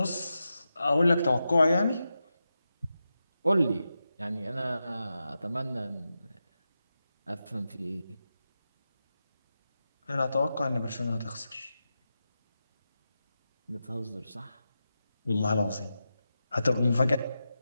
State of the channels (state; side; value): inverted; both; correlation -0.90